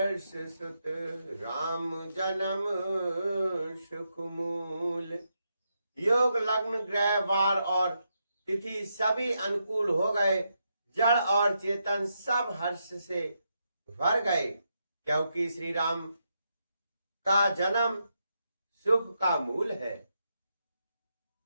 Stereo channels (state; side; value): inverted; both; correlation -0.82